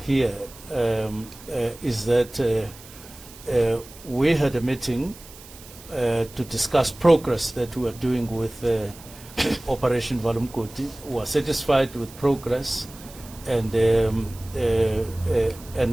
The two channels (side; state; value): right; noise; hiss, 19 dB below the sound